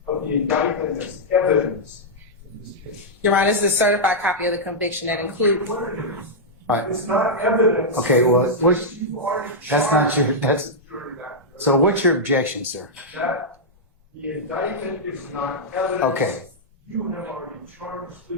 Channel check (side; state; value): both; normal; correlation -0.07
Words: of the indictment as evidence in this case. Your Honor, this is a certified copy of the conviction that includes. What it is. Right. It's not evidence. Okay, well, You've already that's not charged your, that's, the jury that. so what's your objection, sir? That the indictment is not evidence. Okay. You have already charged the